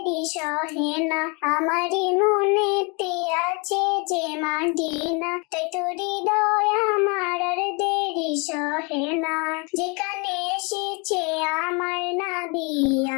সহে না। আমারই মনেতে আছে যে মাদিনা, তাই তোর হৃদয় আমার আর দেরি সহে না। যেখানে এসেছে আমার নবী,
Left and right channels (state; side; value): quieter; right; 31.1 dB